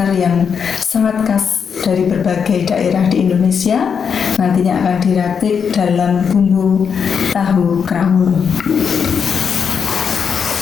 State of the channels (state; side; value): quieter; right; 6.7 dB